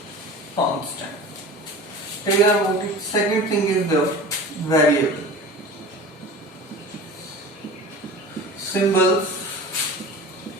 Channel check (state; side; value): normal; both; correlation 0.37